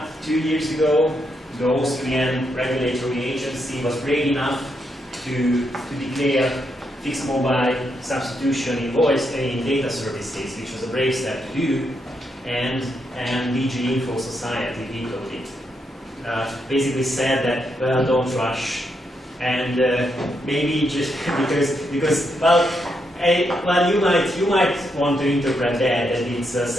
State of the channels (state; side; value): normal; both; correlation 0.80